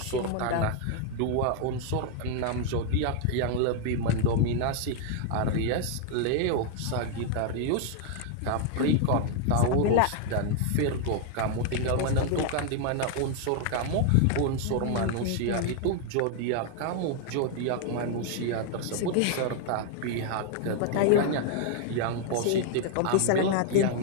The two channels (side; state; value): both; different; correlation 0.00